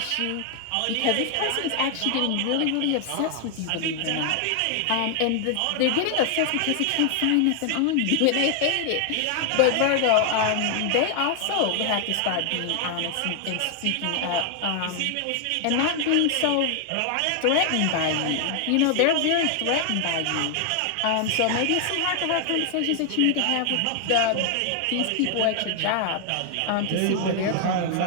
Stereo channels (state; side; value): different; both; correlation 0.00